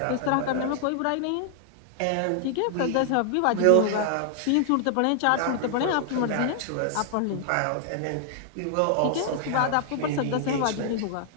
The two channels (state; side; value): different; both; correlation 0.00